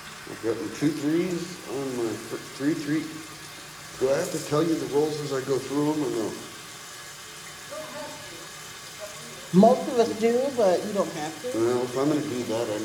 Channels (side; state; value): both; identical; correlation 1.00